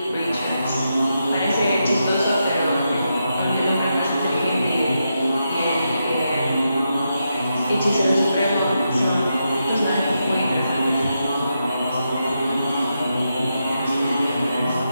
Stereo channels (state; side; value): inverted; both; correlation -0.85